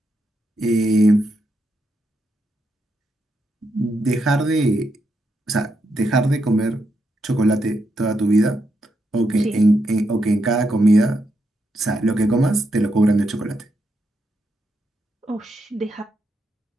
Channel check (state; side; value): normal; both; correlation 0.82